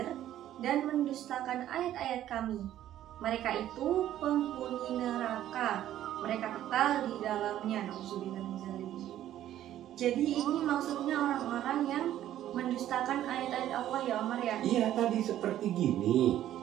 dan mendustakan ayat-ayat kami, mereka itu penghuni neraka. Mereka kekal di dalamnya. Jadi ini maksudnya orang-orang yang mendustakan ayat-ayat Allah ya Omar ya? Iya, tadi seperti gini.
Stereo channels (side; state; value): left; quieter; 12.3 dB